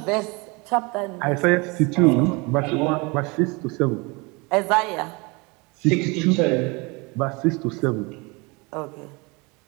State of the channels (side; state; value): left; quieter; 27.5 dB